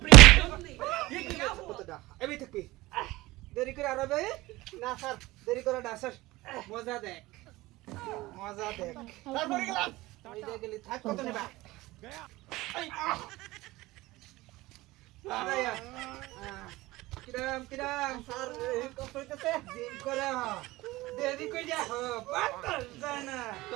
কতটা এবি থাকবি দেরি করে আরবে না স্যার দেরি করে না স্যার মজা দেখ তারপরে গেলাম ওই যে গেলি থাক কত নেবা আয়া কিরাম স্যার কষ্ট হইতেছে জিম করে দেরি কই যা বাতাস যায় না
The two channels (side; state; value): left; quieter; 19.3 dB